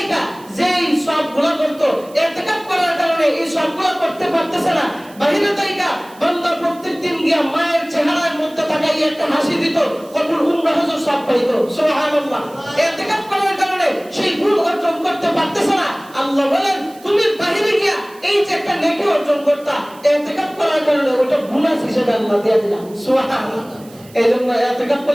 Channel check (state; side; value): noise; right; hiss, 24 dB below the sound